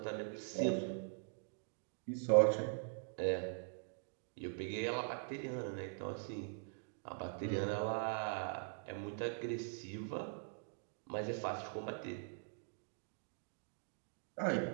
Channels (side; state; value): left; silent; digital silence